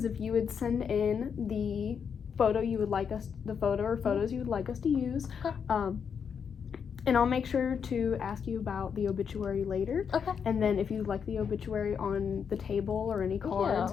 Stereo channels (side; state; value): right; quieter; 6.9 dB